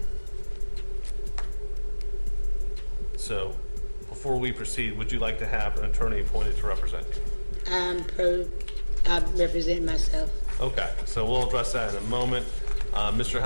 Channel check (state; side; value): inverted; both; correlation -1.00